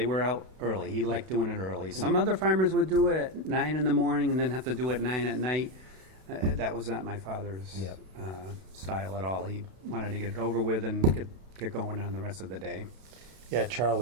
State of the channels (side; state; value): left; late; 32 ms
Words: were out early. He liked doing it early. Some other farmers would do it at 9 in the morning and then have to do it at 9 at night. That was not my father's style at all. He wanted to get it over with and get going on the rest of the day. Yeah,